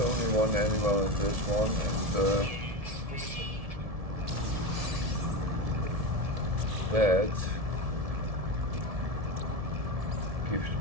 one animal in this one, and that gives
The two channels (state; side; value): late; left; 1.7 ms